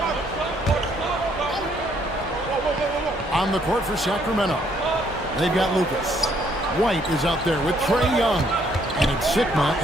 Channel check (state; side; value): normal; both; correlation 0.68